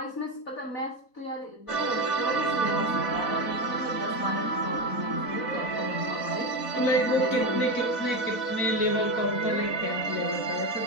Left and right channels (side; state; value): right; late; 4.0 ms